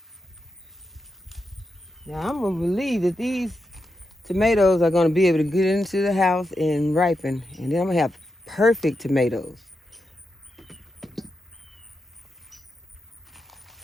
Now I'm gonna believe that these tomatoes are gonna be able to get into the house and ripen, and then I'm gonna have perfect tomatoes.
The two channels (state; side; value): normal; both; correlation 0.87